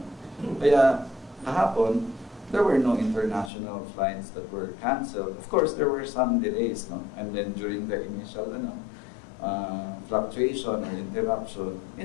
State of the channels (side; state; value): right; drops out; at 3.5 s